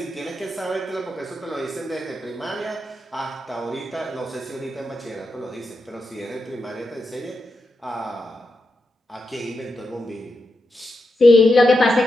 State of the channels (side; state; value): both; normal; correlation 0.87